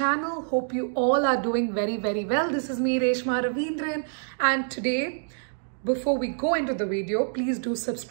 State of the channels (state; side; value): silent; left; digital silence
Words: Hope you all are doing very well. This is me, Reshma Ravindran, and today, before we go into the video, please do